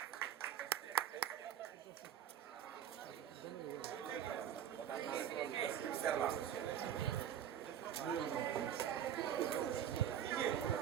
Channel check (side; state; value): left; quieter; 9.6 dB